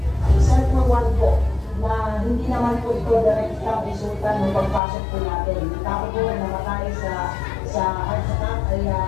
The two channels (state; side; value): drops out; right; at 4.8 s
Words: Set for one po, na hindi naman po ito direktang resulta ng pagpasok po natin. Tao po na namatay sa heart attack ay 4